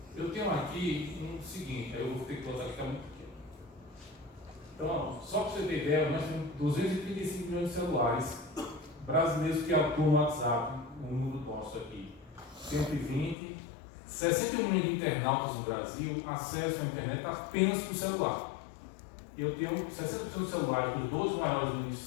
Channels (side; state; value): right; drops out; at 13.4 s